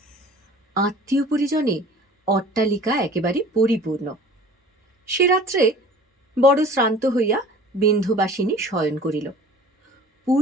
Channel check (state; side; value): normal; both; correlation 0.45